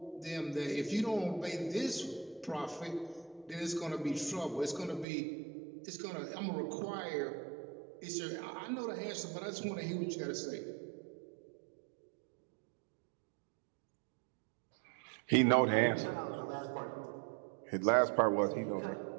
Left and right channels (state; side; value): drops out; left; at 5.1 s